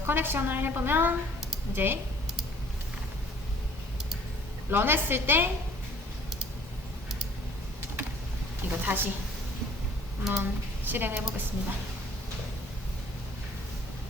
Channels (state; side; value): normal; both; correlation 0.55